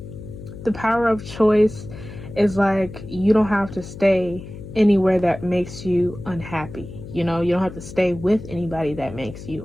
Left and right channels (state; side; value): noise; left; hum, 13 dB below the sound